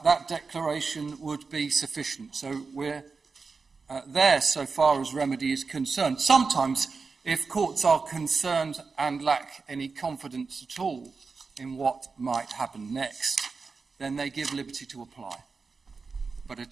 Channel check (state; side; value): quieter; left; 4.6 dB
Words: that declaration would be sufficient. So we're there so far as remedy is concerned. Sometimes, if courts are concerned and lack any confidence at all in what might happen next, then they give liberty to apply. But a